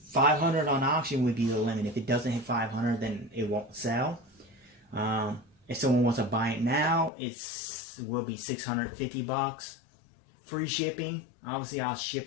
500 on auction would be the limit. If it doesn't hit 500, then it won't sell. If someone wants to buy it now, it will be $650. Free shipping. Obviously, I'll ship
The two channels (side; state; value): right; drops out; at 7.1 s